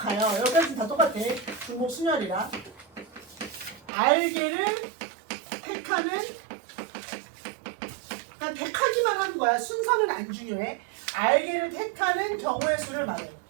여기까지 다 똑같아. 중복 순열이라. r개를 택하는, 그냥 택하기만 하는 거야. 순서는 안 중요해. r개를 택하는 경우의 수를 말해요.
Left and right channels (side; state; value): left; drops out; at 3.9 s